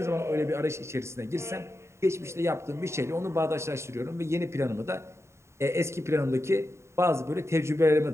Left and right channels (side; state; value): left; late; 0.13 ms